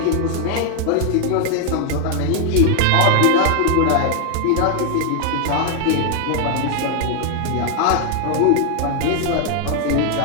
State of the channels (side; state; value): both; different; correlation 0.00